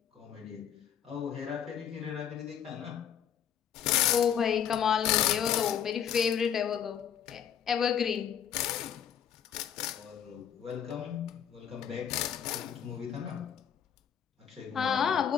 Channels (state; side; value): quieter; right; 8.8 dB